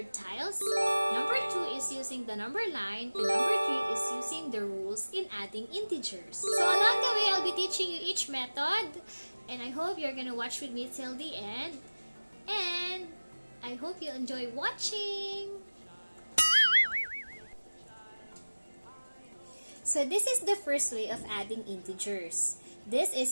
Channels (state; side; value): inverted; both; correlation -1.00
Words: tiles. Number two is using the number line. And number three is using the rules in adding integers. So along the way, I'll be teaching you each method. And I hope you're gonna watch with me till the end. And I hope you enjoy watching. So this is the first way of adding integers. This